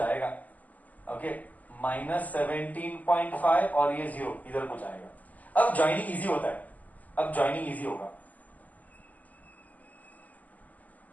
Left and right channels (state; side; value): late; right; 0.079 ms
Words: ओके, -17.5 और ये 0 इधर कुछ आएगा. अब ज्वाइनिंग इजी होता है. अब ज्वाइनिंग इजी होगा.